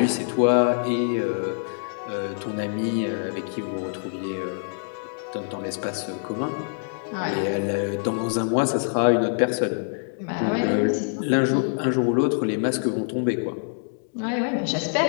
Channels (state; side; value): silent; right; digital silence